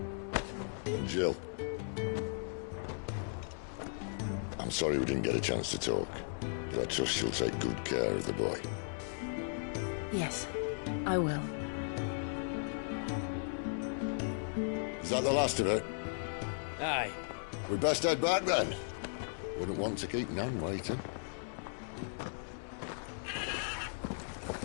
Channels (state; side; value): silent; right; digital silence